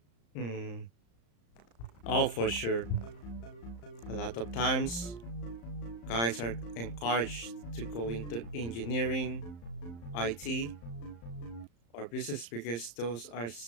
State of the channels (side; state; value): right; late; 35 ms